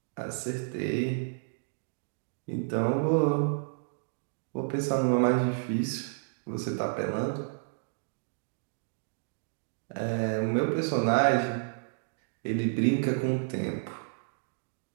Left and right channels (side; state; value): left; silent; digital silence